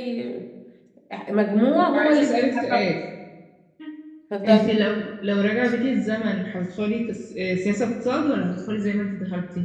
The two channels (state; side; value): identical; both; correlation 1.00